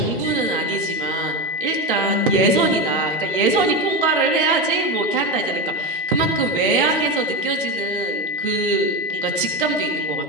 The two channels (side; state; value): both; normal; correlation 0.16